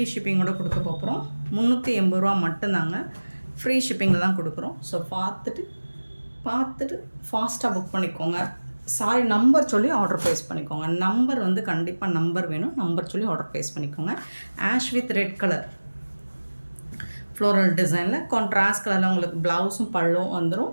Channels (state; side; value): inverted; both; correlation -1.00